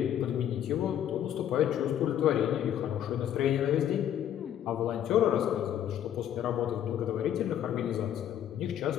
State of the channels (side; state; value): right; quieter; 10.5 dB